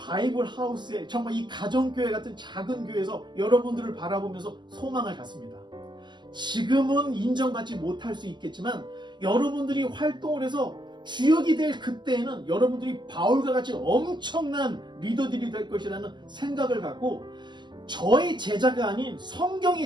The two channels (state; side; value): late; left; 0.21 ms